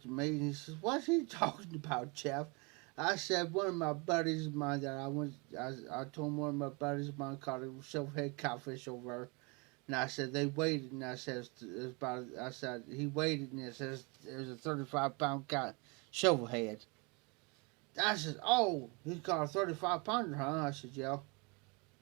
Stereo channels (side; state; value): left; quieter; 30.1 dB